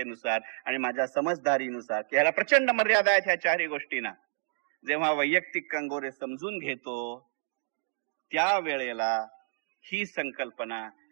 आणि माझ्या समजदारीनुसार, की ह्याला प्रचंड मर्यादा आहेत ह्या 4ही गोष्टींना, जेव्हा वैयक्तिक कंगोरे समजून घेतो, त्यावेळेला ही संकल्पना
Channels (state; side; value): silent; left; digital silence